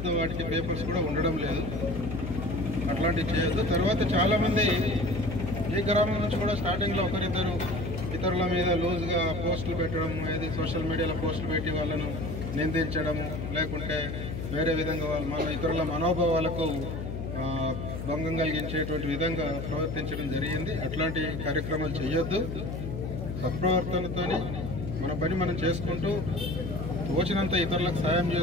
వాటికి పేపర్స్ కూడా ఉండడం లేదు, అట్లాంటివి చేయొద్దు. తర్వాత చాలామంది ఈ గ్రామం నుంచి కూడా స్టార్టింగ్లో ఒకరిద్దరు ఇతరుల మీద లూజ్గా పోస్టులు పెట్టడం, ఏది సోషల్ మీడియాలో పోస్టులు పెట్టి వాళ్ళను నిందించడము, లేకుంటే వేరే విధంగా మన ఇతరుల మనోభావాలకు భంగం కలిగించేటువంటి విధంగా ప్రవర్తించడం జరిగింది. అట్లాంటి కార్యక్రమాలు చేయొద్దు. సత్ప్రవర్తనతో మన పని మనం చేసుకుంటూ తోచినంత ఇతరులకు సాయం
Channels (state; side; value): noise; left; hum, 5 dB below the sound